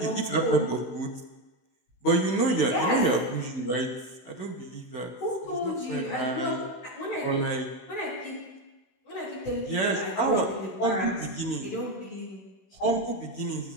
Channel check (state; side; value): late; right; 16 ms